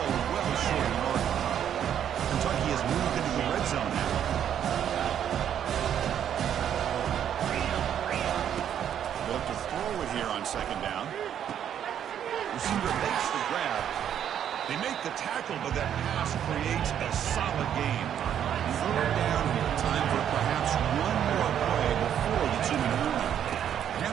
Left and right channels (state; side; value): quieter; left; 9.5 dB